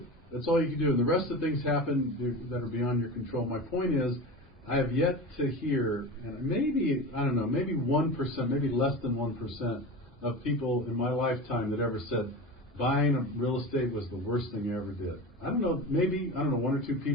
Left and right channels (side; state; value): both; normal; correlation 0.28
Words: That's all you can do. And the rest of the things happen that are beyond your control. My point is, I have yet to hear, and maybe 1%, maybe less than 1%, of people in my lifetime that ever said buying a real estate was the worst thing I ever did. I don't know, 1 or 2